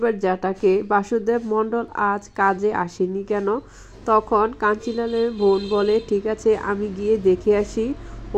জ্যাঠাকে, বাসুদেব মণ্ডল আজ কাজে আসেনি কেন? তখন কাঞ্চিলালের বোন বলে, ঠিক আছে আমি গিয়ে দেখে আসি ও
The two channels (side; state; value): both; identical; correlation 1.00